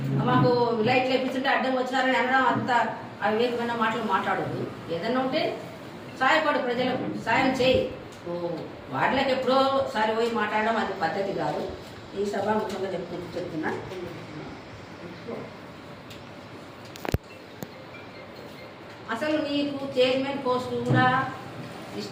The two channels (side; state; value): both; identical; correlation 1.00